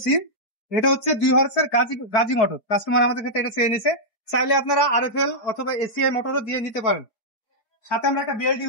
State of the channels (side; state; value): right; late; 4.7 ms